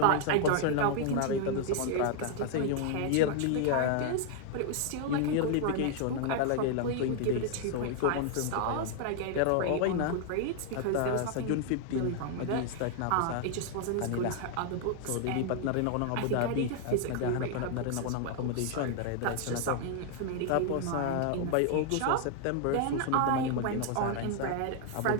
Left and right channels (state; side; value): different; both; correlation 0.00